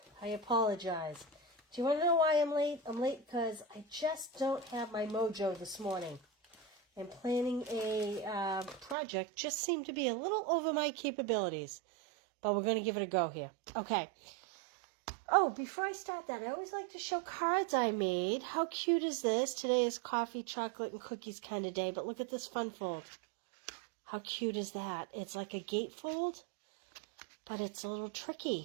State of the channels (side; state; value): left; drops out; at 9.0 s